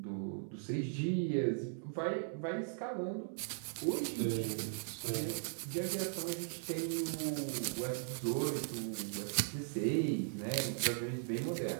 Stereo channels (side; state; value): left; silent; 52 dB below the other